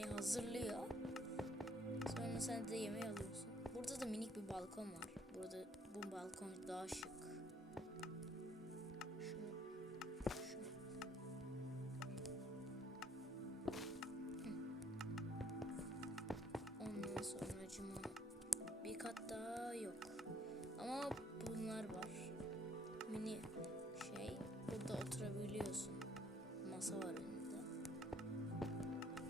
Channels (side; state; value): both; normal; correlation 0.64